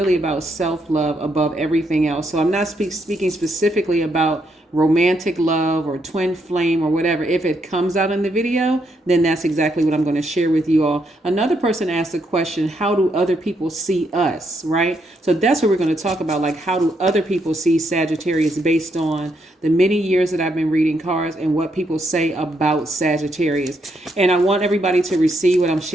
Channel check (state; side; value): normal; both; correlation 0.77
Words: about self-love above everything else. So I'm not speaking specifically about romantic love or twin flame or whatever. If it comes out in the video, then that's exactly what I'm going to share with you all. Another person asked the question, how do other people see us, right? So that's what we're going to talk about, like how do other people see Sagittarius based on the many years that I've been reading cards and what people say about Sagittarius. And I want everybody to receive what I'm